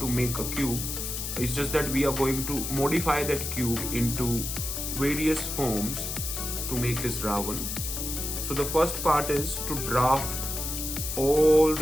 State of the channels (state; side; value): noise; left; hiss, 4 dB below the sound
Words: make a cube. It's just that we are going to modify that cube into various forms to make this Ravan. So the first part is to draft all